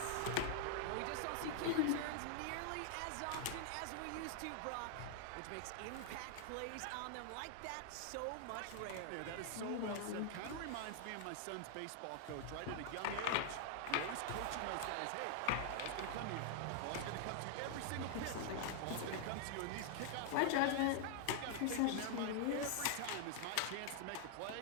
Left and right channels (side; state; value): both; different; correlation 0.00